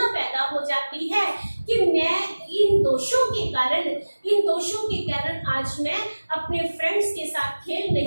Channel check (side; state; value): both; inverted; correlation -1.00